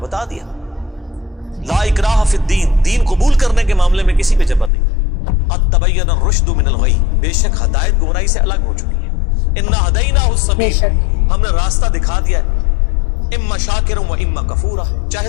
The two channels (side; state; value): right; drops out; at 4.7 s